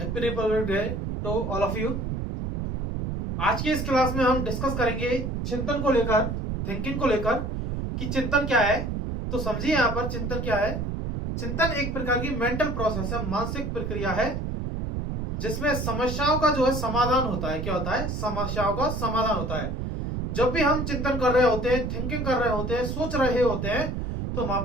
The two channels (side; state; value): right; noise; rumble, 3 dB below the sound